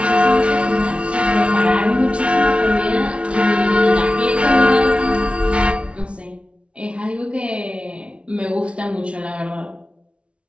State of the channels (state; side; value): late; left; 0.060 ms